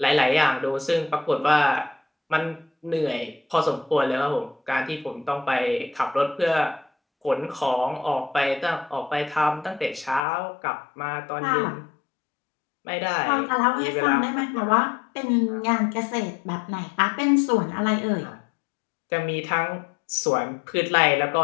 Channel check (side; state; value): right; drops out; at 10.2 s